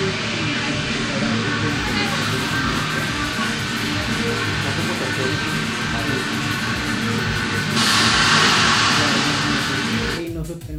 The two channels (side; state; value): both; identical; correlation 1.00